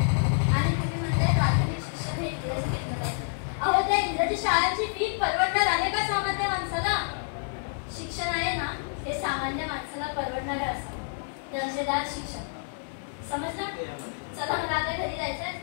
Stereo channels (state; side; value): silent; right; digital silence